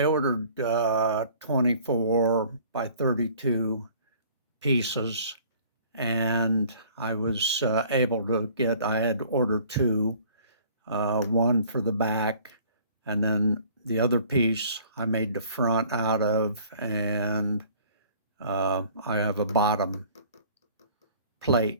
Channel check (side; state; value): both; inverted; correlation -0.52